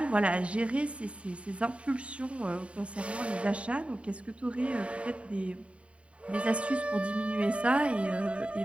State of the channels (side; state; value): left; late; 0.062 ms